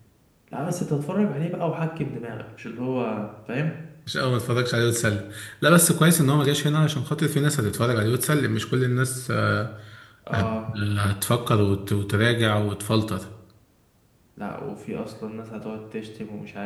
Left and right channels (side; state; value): both; identical; correlation 1.00